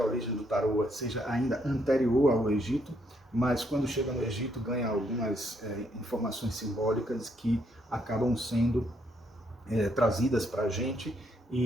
origem do tarô seja ainda anterior ao Egito, mas quando chega no Egito ganha algumas informações simbólicas que acabam sendo trazidas para a gente,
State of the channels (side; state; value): both; normal; correlation 0.73